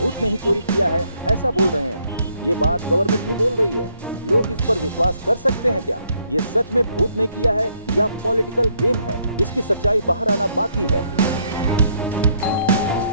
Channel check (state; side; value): inverted; both; correlation -0.70